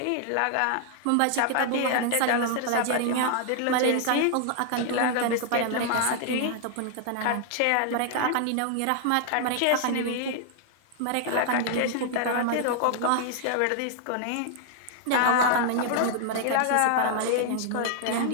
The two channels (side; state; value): both; different; correlation 0.00